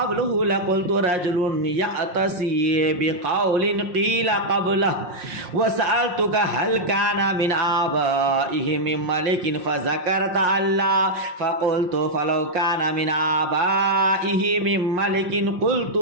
لقلت رجل يأتسي بقول قيل قبله وسألتك هل كان من آبائه من ملك فذكرت الله فقلت فلو كان من آبائه من ملك قلت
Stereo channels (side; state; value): left; late; 5.6 ms